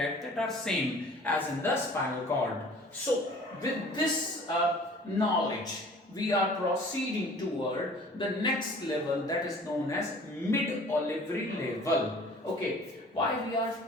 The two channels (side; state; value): both; normal; correlation 0.49